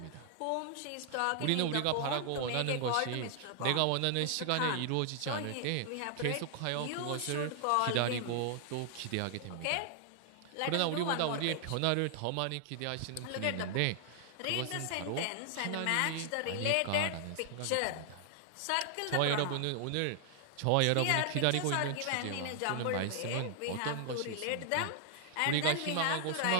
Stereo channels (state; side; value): different; both; correlation 0.00